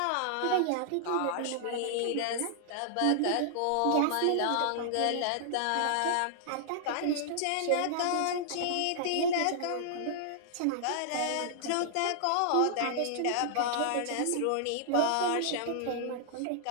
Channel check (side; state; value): both; different; correlation -0.01